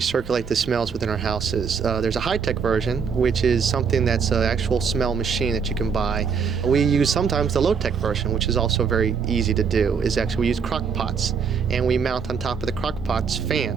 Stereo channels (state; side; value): quieter; left; 6.2 dB